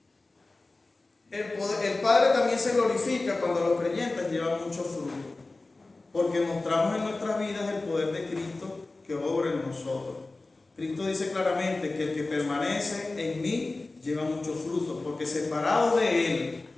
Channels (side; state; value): right; quieter; 3.3 dB